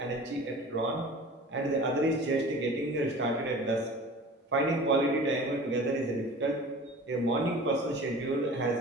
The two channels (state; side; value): normal; both; correlation 0.40